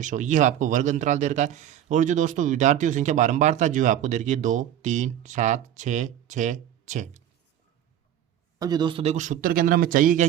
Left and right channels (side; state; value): left; quieter; 11.0 dB